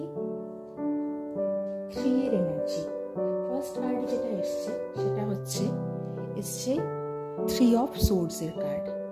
3 এর এনার্জি। ফার্স্ট কার্ড যেটা এসছে সেটা হচ্ছে এসছে 3 অফ সোর্ডসের কার্ড।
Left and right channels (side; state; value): both; identical; correlation 1.00